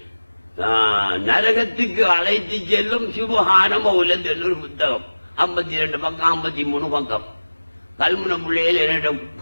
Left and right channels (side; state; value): both; inverted; correlation -1.00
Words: நரகத்துக்கு அழைத்து செல்லும் சுபஹான மௌலத் என்ற ஒரு புத்தகம். 52 பக்கம் 53 பக்கம். கல்முனை பிள்ளைகள் என்னிடம்